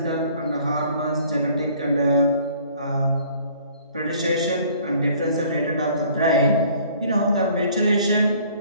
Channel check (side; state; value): both; inverted; correlation -0.55